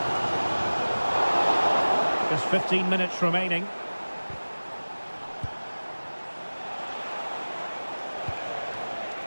Just 15 minutes remaining.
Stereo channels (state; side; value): inverted; both; correlation -1.00